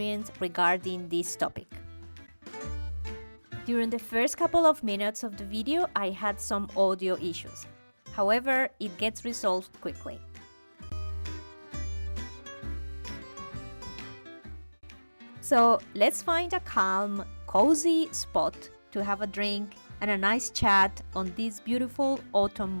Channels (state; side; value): inverted; both; correlation -1.00